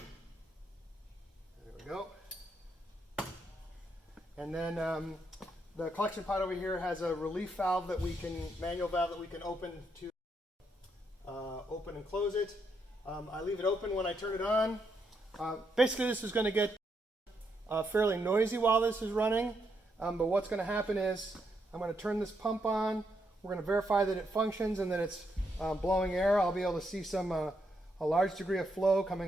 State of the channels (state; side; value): normal; both; correlation 0.79